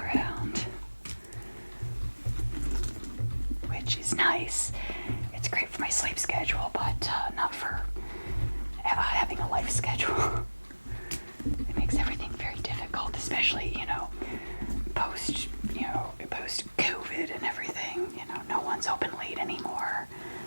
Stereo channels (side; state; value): both; inverted; correlation -1.00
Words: which is nice. It's great for my sleep schedule, but not for having a life schedule. It makes everything very difficult, especially, you know, post COVID and everything. You know, no one's open late anymore,